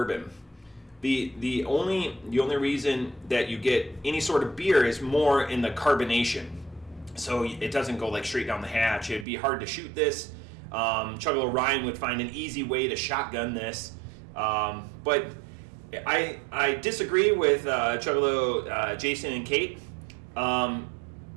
The only reason that you get any sort of beer is more in the carbonation. So it doesn't go like straight down the hatch. It'd be hard to shoot this. Chuggalo Ryan would find an easy way to shotgun this. But I disagree with Chuggalo Jason and Kate.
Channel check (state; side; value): drops out; left; at 9.2 s